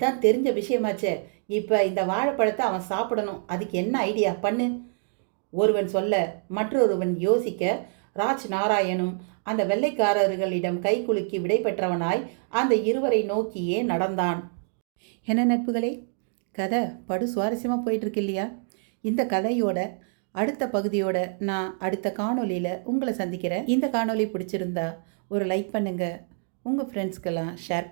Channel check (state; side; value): silent; left; 61 dB below the other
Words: தெரிஞ்ச விஷயமாச்சே. இப்போ இந்த வாழைப்பழத்தை அவன் சாப்பிடணும். அதுக்கு என்ன ஐடியா பண்ணு? ஒருவன் சொல்ல மற்றொருவன் யோசிக்க ராஜ் நாராயணும் அந்த வெள்ளைக்காரர்களிடம் கை குலுக்கி விடை பெற்றவனாய் அந்த இருவரை நோக்கியே நடந்தான். என்ன நட்புகளே, கதை படு சுவாரஸ்யமாக போயிட்டுருக்கு இல்லையா? இந்த கதையோட அடுத்த பகுதியோட நான் அடுத்த காணொலியில் உங்களை சந்திக்கிறேன். இந்த காணொலி பிடிச்சிருந்தா ஒரு லைக் பண்ணுங்கள், உங்கள் ஃப்ரெண்ட்ஸ்க்கெல்லாம் ஷேர்